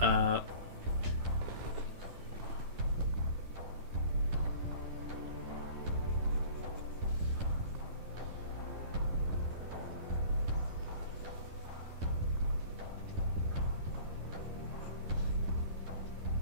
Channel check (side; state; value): left; late; 10 ms